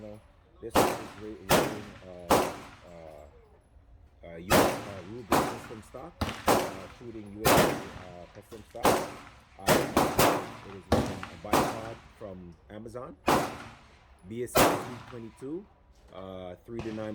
this is rating US Ruger custom stock, shooting US custom stock. It is a bipod from Amazon, BSC 322. 3 to 9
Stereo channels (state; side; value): identical; both; correlation 1.00